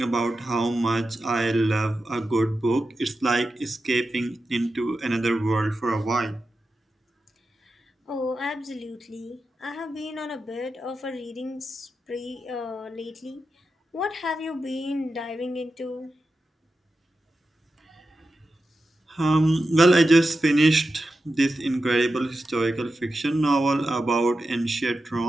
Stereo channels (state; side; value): normal; both; correlation 0.91